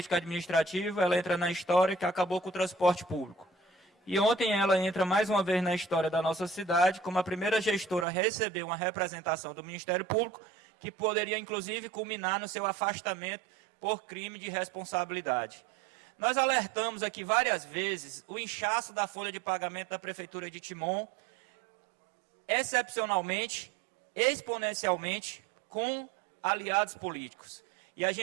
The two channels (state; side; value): drops out; left; at 8.1 s